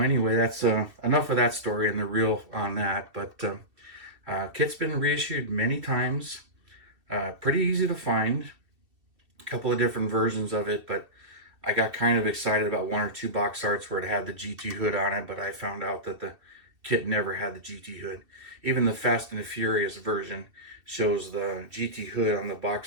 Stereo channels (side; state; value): left; late; 2.8 ms